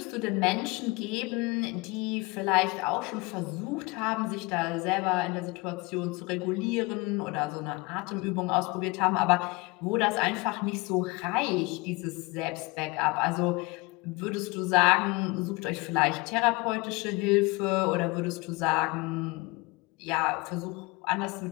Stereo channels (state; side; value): quieter; right; 25.5 dB